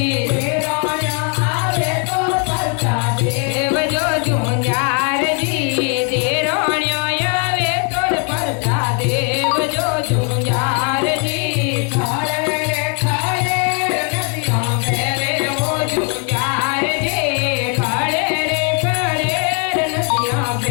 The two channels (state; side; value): quieter; right; 39.5 dB